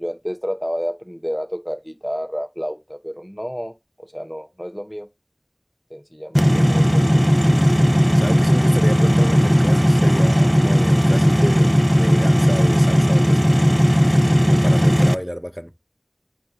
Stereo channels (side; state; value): both; identical; correlation 1.00